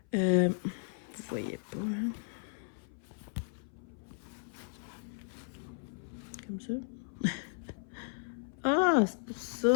Vous voyez pas, hein? Comme ça. Ah, c'est pour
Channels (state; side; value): silent; right; 54 dB below the other